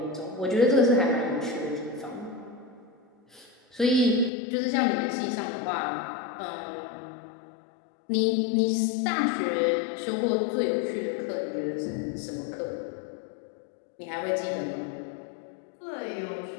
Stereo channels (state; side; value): drops out; right; at 4.3 s